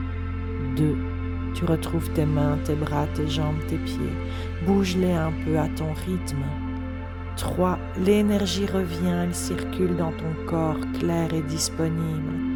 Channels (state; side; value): identical; both; correlation 1.00